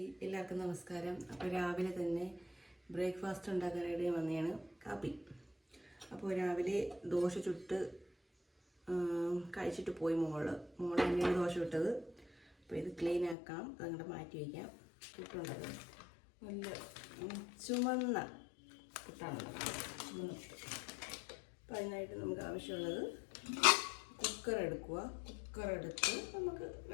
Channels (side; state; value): right; drops out; at 13.4 s